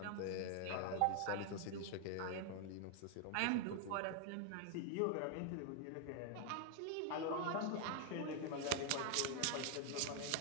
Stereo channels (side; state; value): both; different; correlation 0.00